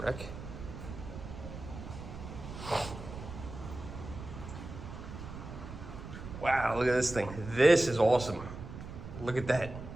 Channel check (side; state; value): right; noise; rumble, 11 dB below the sound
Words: Wow, look at this thing. This is awesome. Look at that.